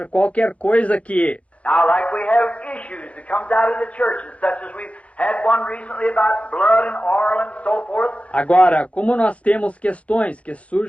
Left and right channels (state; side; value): late; right; 0.064 ms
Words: qualquer coisa que... now like we have issues that comes out of the churches, such as we've had one recently about blood and oil and so forth. Agora, como nós temos questões que